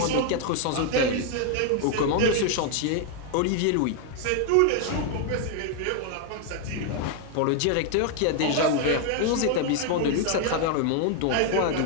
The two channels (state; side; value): different; both; correlation 0.00